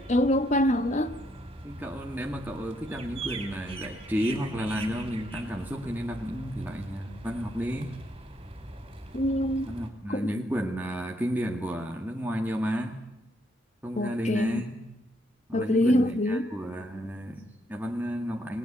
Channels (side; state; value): both; normal; correlation 0.74